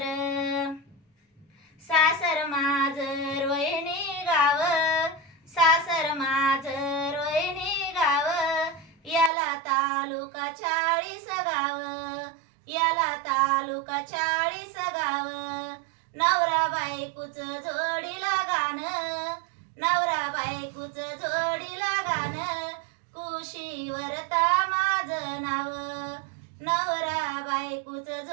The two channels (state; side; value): drops out; left; at 9.3 s